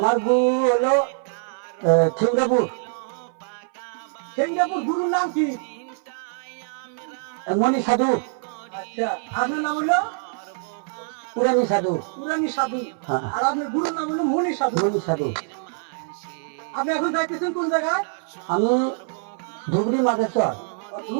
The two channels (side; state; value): left; silent; 58 dB below the other